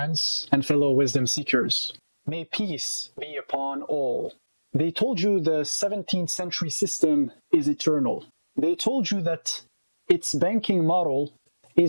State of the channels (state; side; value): inverted; both; correlation -1.00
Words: and fellow wisdom seekers. May peace be upon all. They told you the 17th century system is eternal. They told you that its banking model